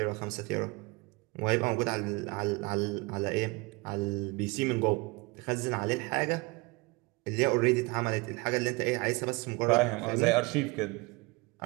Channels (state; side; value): quieter; left; 26.2 dB